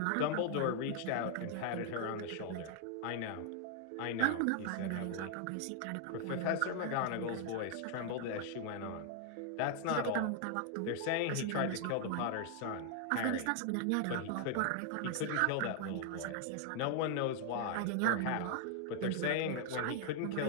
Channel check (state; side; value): different; both; correlation 0.00